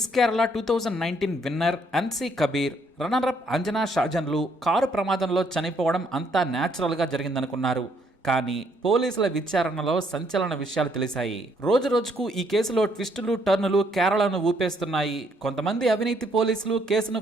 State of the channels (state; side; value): normal; both; correlation 0.69